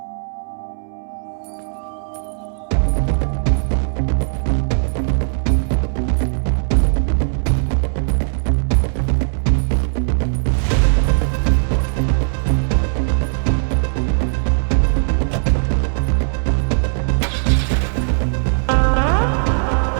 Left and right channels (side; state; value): left; silent; 66 dB below the other